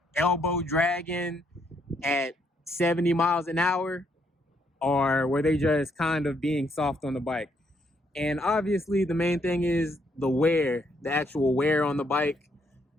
elbow dragging at 70 miles an hour, or were they just kind of being soft on the bike? And obviously the main thing is the wear, the actual wear on the bike,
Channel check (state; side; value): normal; both; correlation 0.73